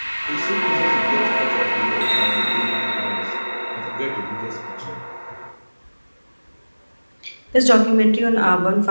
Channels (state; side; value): inverted; both; correlation -1.00